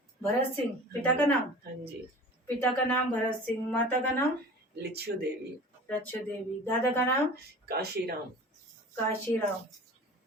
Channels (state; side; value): normal; both; correlation 0.40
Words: भरत सिंह पिता का नाम? हाँ जी। पिता का नाम भरत सिंह, माता का नाम लिच्छू देवी। रच्चू देवी, दादा का नाम काशीराम। काशीराम।